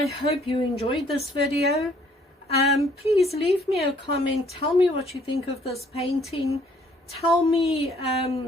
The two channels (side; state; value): both; normal; correlation 0.62